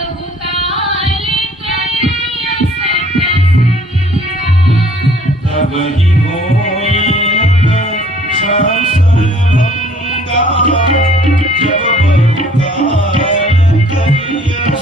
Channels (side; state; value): both; normal; correlation 0.56